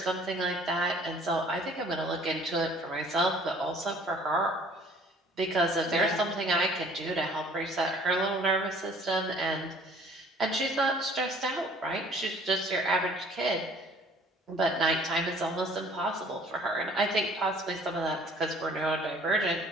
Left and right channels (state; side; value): normal; both; correlation 0.54